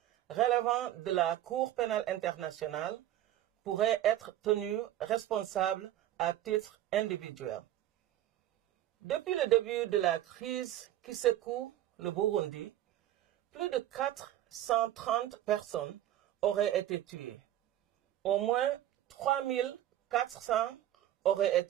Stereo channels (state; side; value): quieter; left; 12.9 dB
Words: relevant de la Cour pénale internationale pourrait être tenue responsable à titre individuel. Depuis le début de la crise qui secoue le Burundi, plus de 430 personnes auraient été tuées. Au moins 3400 auraient